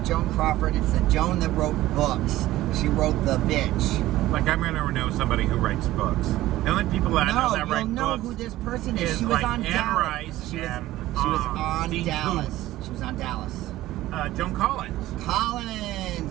Joan Crawford. It's the Joan that wrote books. She wrote The Bitch. Like, I'm going to know somebody who writes books. The only people that I know that write you'll know books who this person is. is She was like on Anne Dallas. Rice She was and, on Dean Dallas. She was on Dallas. Joan Collins.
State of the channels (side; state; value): left; quieter; 15.8 dB